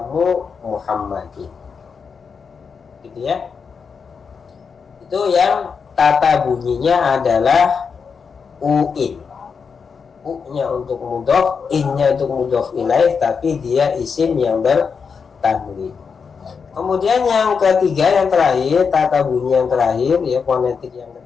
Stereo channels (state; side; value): quieter; right; 5.8 dB